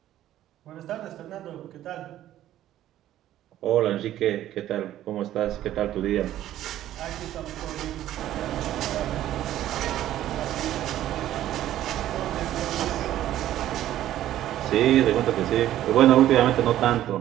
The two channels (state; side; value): quieter; left; 12.9 dB